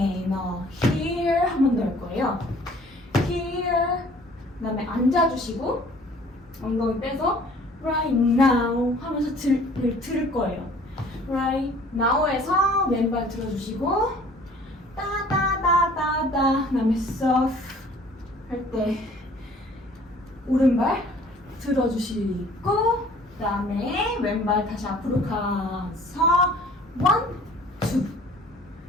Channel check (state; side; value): normal; both; correlation 0.53